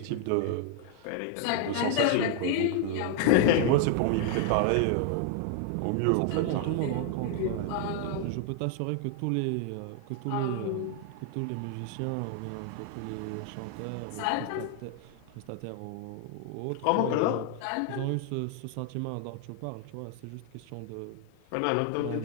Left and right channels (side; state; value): both; different; correlation 0.00